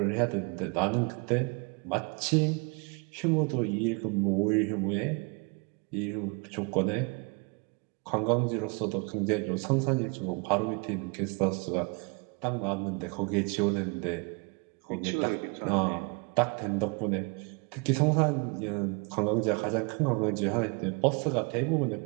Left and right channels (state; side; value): quieter; left; 32.5 dB